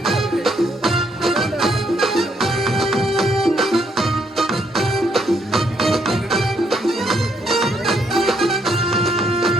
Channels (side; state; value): both; normal; correlation 0.73